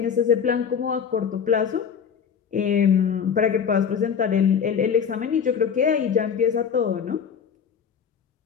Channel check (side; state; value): right; quieter; 7.2 dB